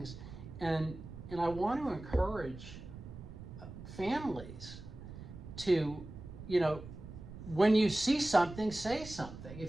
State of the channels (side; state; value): right; noise; rumble, 13 dB below the sound